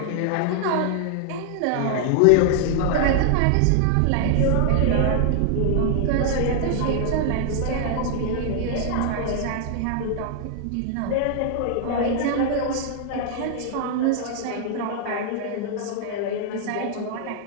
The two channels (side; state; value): both; different; correlation 0.00